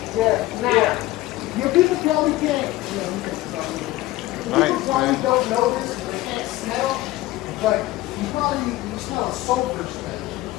Yeah. Your people probably can't. People probably don't know this, they can't smell, but you smell a sulfur smell.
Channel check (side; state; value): right; quieter; 17.3 dB